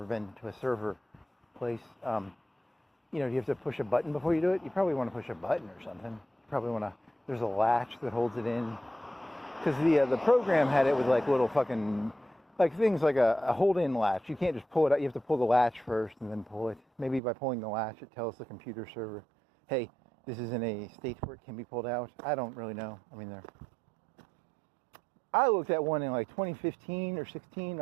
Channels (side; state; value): left; drops out; at 17.2 s